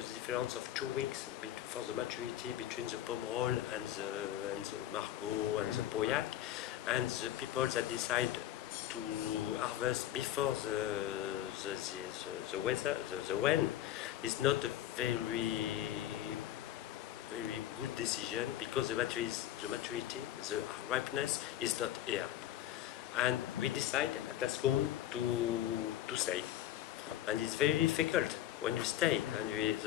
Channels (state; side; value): quieter; right; 12.5 dB